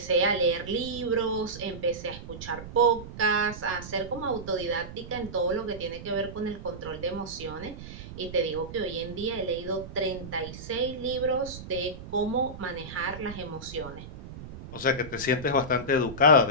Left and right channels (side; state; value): right; noise; rumble, 12 dB below the sound